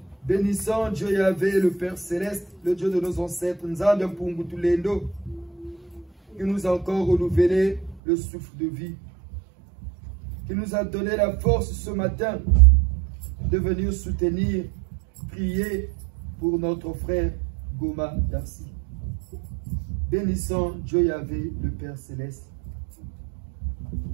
Bénissant Dieu Yahvé, le Père Céleste, le Dieu de nos ancêtres, Nzambe Mpungutulendo, qui nous a encore renouvelé le souffle de vie, qui nous a donné la force ce matin de venir soutenir, prier pour notre frère Goma Darcy. Bénissant Dieu Yahvé, le Père Céleste.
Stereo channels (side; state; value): left; drops out; at 8.0 s